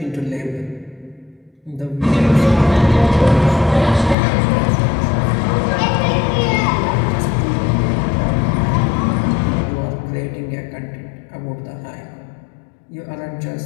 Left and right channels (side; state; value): right; drops out; at 4.2 s